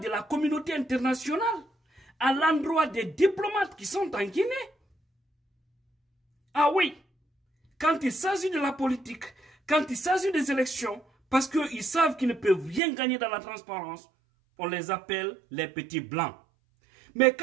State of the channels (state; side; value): drops out; left; at 12.8 s